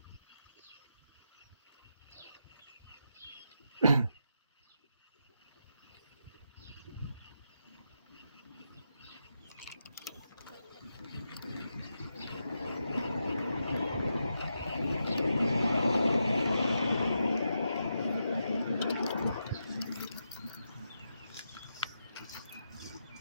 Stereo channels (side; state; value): both; inverted; correlation -0.85